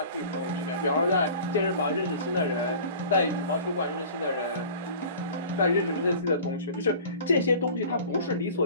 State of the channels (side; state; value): both; inverted; correlation -0.42